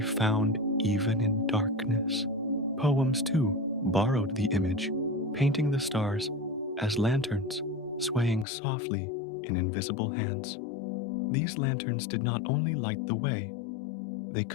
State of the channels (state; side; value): drops out; right; at 8.5 s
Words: even in darkness. Poems, too, borrowed the image, painting the stars as lanterns swaying softly in invisible hands. These lanterns did not only light the way, they